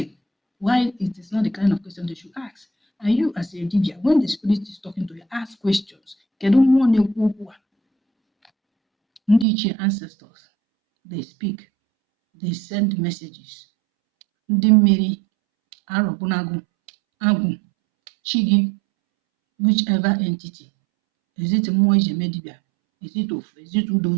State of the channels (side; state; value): left; drops out; at 9.5 s